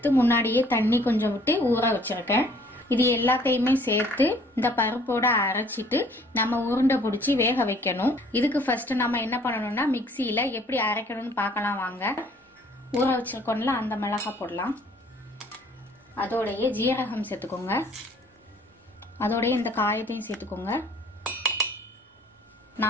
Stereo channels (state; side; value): normal; both; correlation 0.57